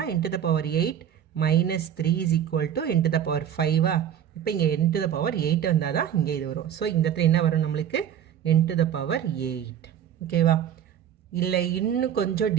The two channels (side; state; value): left; quieter; 9.6 dB